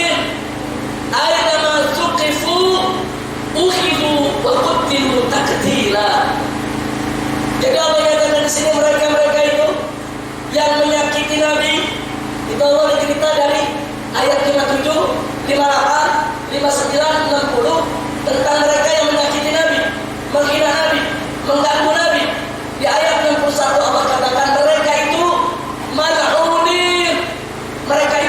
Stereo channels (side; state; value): both; identical; correlation 1.00